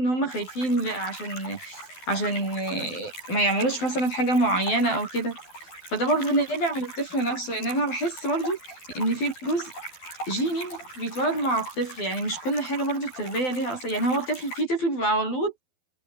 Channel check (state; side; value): late; right; 12 ms